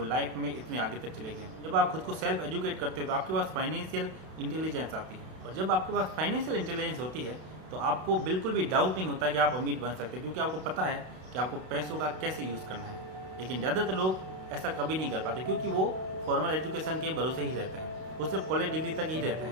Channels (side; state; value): left; late; 32 ms